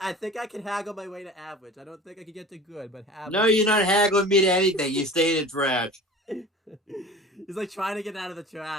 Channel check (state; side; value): normal; both; correlation 0.40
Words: can haggle my way to average. I don't think I can get to good, but No, average. you're not haggling me to anything. You stay in the trash. He's like trying to get out of the